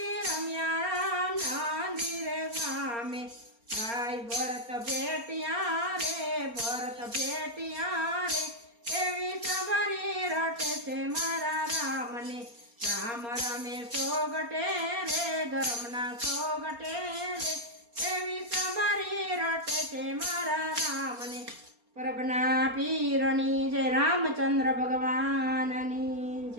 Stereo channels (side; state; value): left; late; 4.3 ms